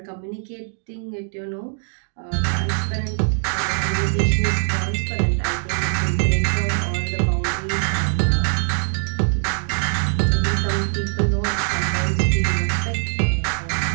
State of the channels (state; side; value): silent; left; 56 dB below the other